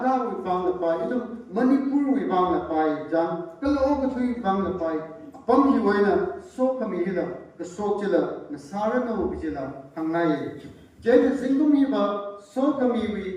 wibang lapay, idong Manipur wibang lapay, jang kaloo katui wibang lapay, apam hi waina, so kami hila, kasok chila, nasara na wabijila, hangay. Jayta zingkum hi ba, so kami wi,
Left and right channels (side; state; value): both; identical; correlation 1.00